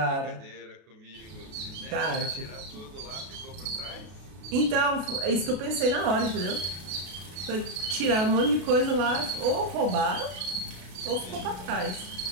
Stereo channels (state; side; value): late; left; 32 ms